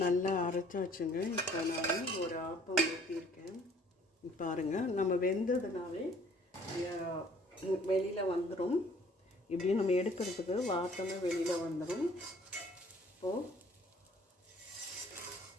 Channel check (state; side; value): normal; both; correlation 0.57